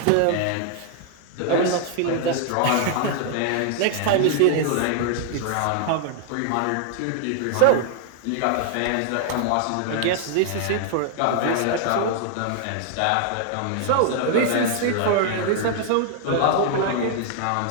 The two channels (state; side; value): different; both; correlation 0.00